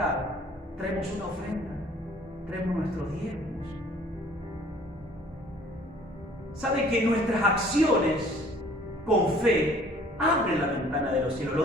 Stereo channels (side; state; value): both; normal; correlation 0.55